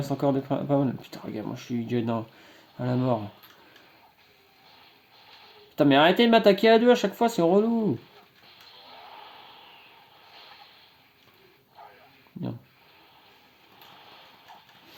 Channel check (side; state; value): both; identical; correlation 1.00